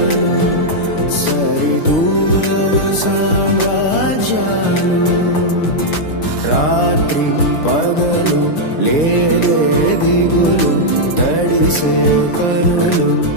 సరిదూరలు సామ్రాజ్యాలు రాత్రి పగలు లేదే దిగులు తడిసే కనులు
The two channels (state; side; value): late; right; 5.9 ms